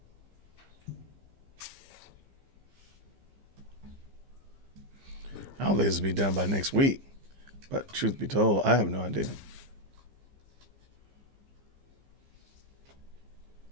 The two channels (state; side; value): late; left; 15 ms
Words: I don't think this will be done by next week. But truth be told, I have no idea.